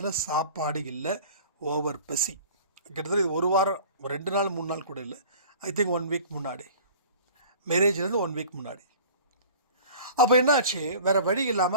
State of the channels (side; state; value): both; inverted; correlation -0.44